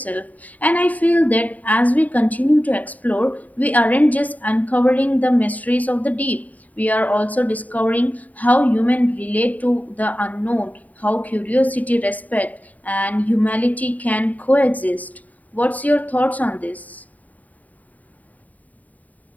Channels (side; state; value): right; late; 0.074 ms